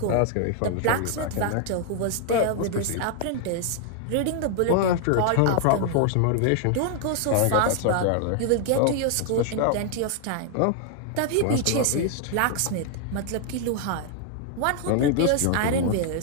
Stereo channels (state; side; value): different; both; correlation 0.00